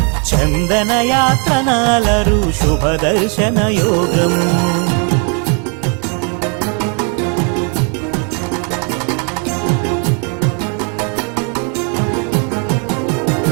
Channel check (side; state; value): left; quieter; 38.8 dB